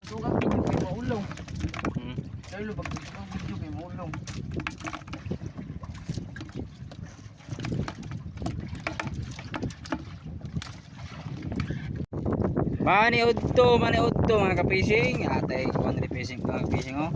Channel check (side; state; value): both; identical; correlation 1.00